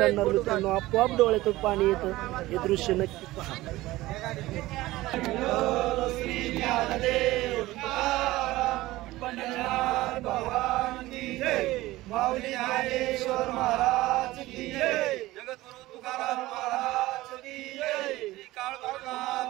मित्रांनो आपोआप डोळ्यातून पाणी येतं. हे दृश्य नक्की पहा. माऊली ज्ञानेश्वर महाराज की जय, जगद्गुरु तुकाराम महाराज की जय, श्री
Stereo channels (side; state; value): left; quieter; 17.9 dB